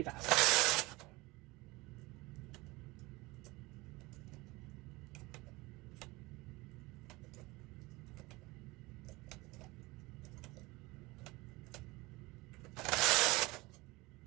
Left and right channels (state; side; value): quieter; left; 22.4 dB